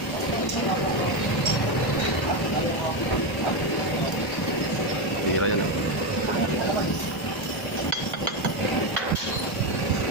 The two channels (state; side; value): normal; both; correlation 0.11